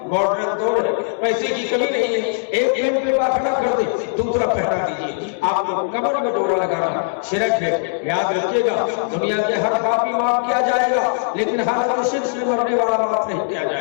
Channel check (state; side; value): silent; right; digital silence